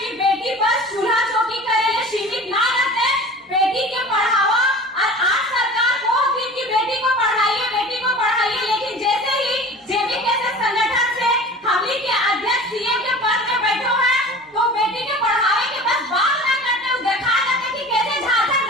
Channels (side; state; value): both; normal; correlation 0.40